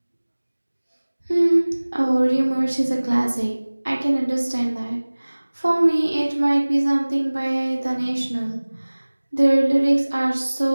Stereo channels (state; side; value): inverted; both; correlation -1.00